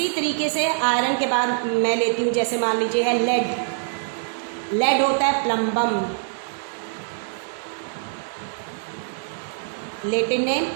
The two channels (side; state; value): left; silent; digital silence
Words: तरीके से आयरन के बाद मैं लेती हूँ, जैसे मान लीजिए है लेड, लेड होता है प्लम्बम, लेटिन नेम,